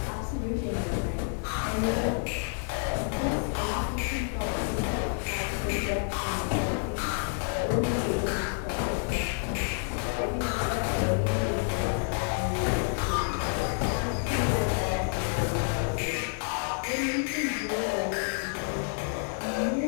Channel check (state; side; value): silent; right; 59 dB below the other